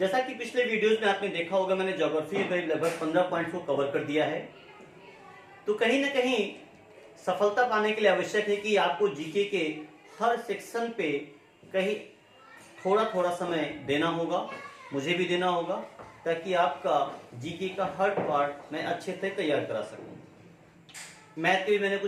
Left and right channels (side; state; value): both; identical; correlation 1.00